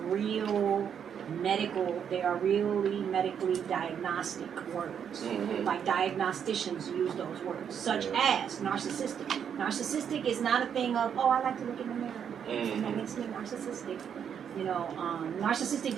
they are really medically diagnostic words. Mhm. Like diagnosticians use those words, such as narcissistic. Narcissistic is not a thing of, oh, I like to look in the mirror. Mhm. That makes me narcissistic. You know, narcissistic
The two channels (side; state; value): left; quieter; 8.1 dB